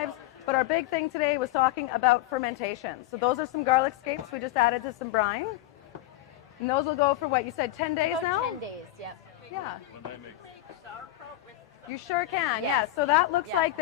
But our big thing today was talking about fermentation. So those are some garlic scapes we just added to some brine. And those will go for what you said, 10 days About now? 10 days, yep. Yeah. When I make You sure can. Yes. Yeah. So that looks like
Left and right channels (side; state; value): right; quieter; 15.2 dB